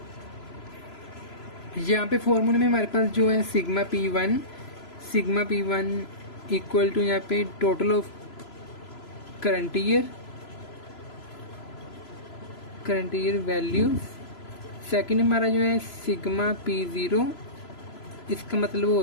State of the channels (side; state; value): right; late; 3.0 ms